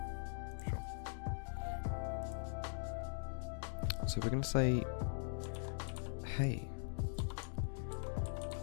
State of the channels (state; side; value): silent; right; digital silence